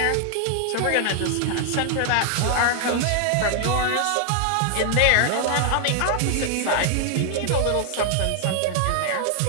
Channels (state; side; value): different; both; correlation 0.00